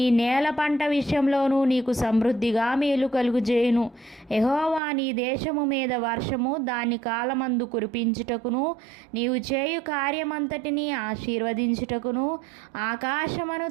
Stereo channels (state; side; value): drops out; left; at 4.8 s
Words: నేల పంట విషయంలోనూ నీకు సమృద్ధిగా మేలు కలుగుజేయును. యెహోవా నీ దేశము మీద వర్షము దాని కాలమందు కురిపించుటకును, నీవు చేయు కార్యమంతటిని ఆశీర్వదించుటకును ఆకాశమును